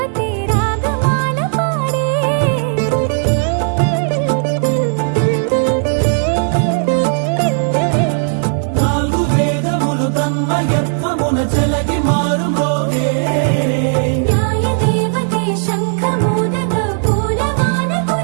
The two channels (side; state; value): left; silent; 69 dB below the other